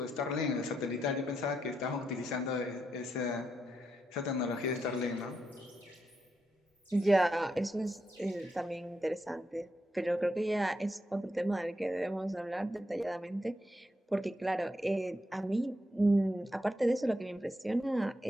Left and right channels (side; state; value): both; normal; correlation 0.82